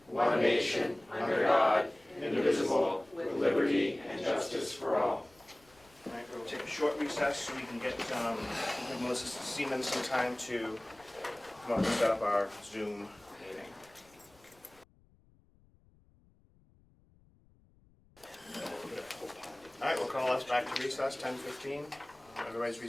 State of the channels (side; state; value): left; noise; rumble, 30 dB below the sound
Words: one nation, under God, indivisible, with liberty and justice for all. All right, we'll take a short recess so we can get Melissa Seaman some time to come up and set up our Zoom meeting. All right, we'll call us back to recess, 10:15. Everybody's